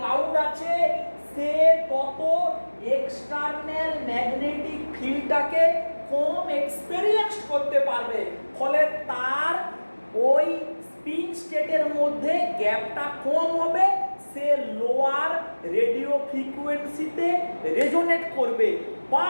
আছে, সে তত এক্সটার্নাল ম্যাগনেটিক ফিল্ডটাকে কম এক্সপেরিয়েন্স করতে পারবে, ফলে তার ওই স্পিন স্টেটের মধ্যে গ্যাপটা কম হবে, সে লোয়ার রেডিও ফ্রিকোয়েন্সিতে রেজোনেট করবে বা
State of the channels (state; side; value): inverted; both; correlation -1.00